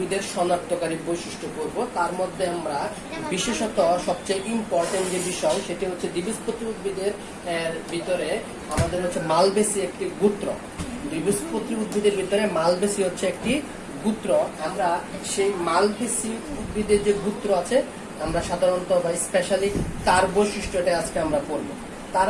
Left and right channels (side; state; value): both; identical; correlation 1.00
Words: শনাক্তকারী বৈশিষ্ট্য করব। তার মধ্যে আমরা বিশেষত সবচেয়ে ইম্পর্টেন্ট যে বিষয় সেটি হচ্ছে দ্বিবীজপত্রী উদ্ভিদের ভিতরে আমাদের হচ্ছে মালবেসি একটি গোত্র। দ্বিবীজপত্রী উদ্ভিদের ভিতরে মালবেসি হচ্ছে একটি গোত্র। আমরা সেই মালবেসি উদ্ভিদের যে গোত্র আছে আমরা সাধারণত বা স্পেশালি তার বৈশিষ্ট্যটা আজকে আমরা পড়ব। তার